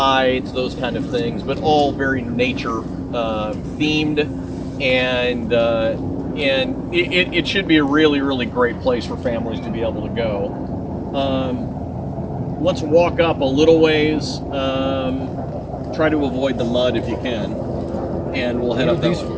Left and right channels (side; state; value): both; identical; correlation 1.00